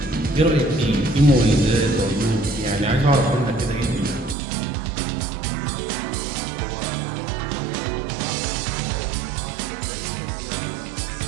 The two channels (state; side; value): drops out; left; at 4.4 s